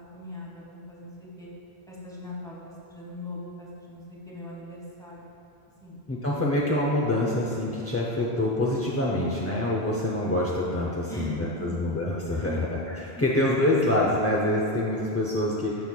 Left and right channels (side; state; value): both; normal; correlation 0.18